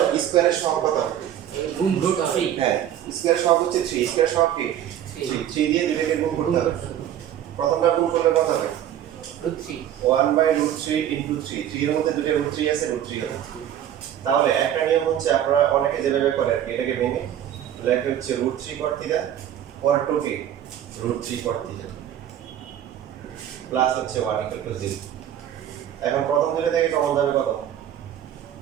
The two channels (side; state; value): left; quieter; 10.8 dB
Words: স্কয়ারের সহগ কত হবে, গুণ করতে হবে হ্যাঁ স্কয়ারের সহগ হচ্ছে 3, স্কয়ারের সহগ কি 3 দিয়ে দুইটাকে গুণ করতে হবে। প্রথমটা গুণ করলে কত হবে √3 1/√3 ইনটু 3, 3 এর মধ্যে দুটো √3 আছে, √3 হবে। তাহলে একটা নিয়ম হচ্ছে আপনারা অনেকে যেভাবে করে আর কি, এটাকে ভেঙে লেখা হচ্ছে √3 cot থিটা পর 2 কে √3 cot থিটা প্লাস হচ্ছে 1 ইকুয়াল টু 0। এখন প্রথম দুটো থেকে কমন যাবে কত